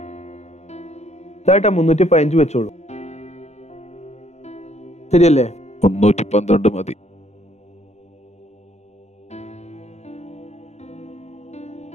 ഇതായിട്ടാ 315 വെച്ചോളൂ. ശരിയല്ലേ? 312 മതി.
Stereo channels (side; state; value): right; late; 0.32 ms